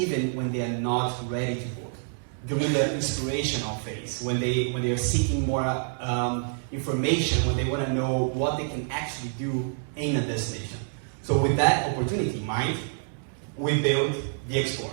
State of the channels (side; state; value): left; silent; digital silence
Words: when they are not ready to book, during the inspirational phase, when they are seeking more information, when they want to know what they can actually do in a destination. So with that opportunity in mind, we built the Explorer.